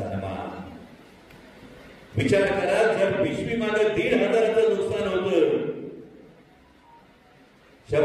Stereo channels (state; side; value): identical; both; correlation 1.00